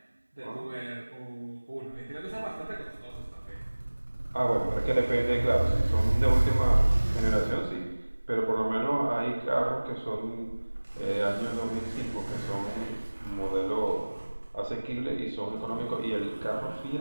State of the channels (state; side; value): inverted; both; correlation -1.00